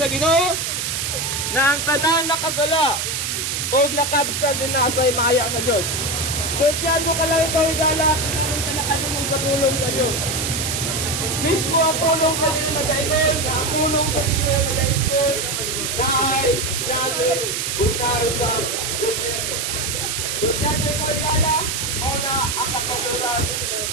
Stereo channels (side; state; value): right; noise; hiss, 1 dB below the sound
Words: Ginoo na ang tanan nakasala ug nakabsan din na sa maya sa Dios. So tiyan mo ka lang ikaw igala kung ka nakalungog sa pulong sa Dios. Mismo ang pulong sa Ginoo nag-ingon, ang pulong sa Ginoo nag-ingon na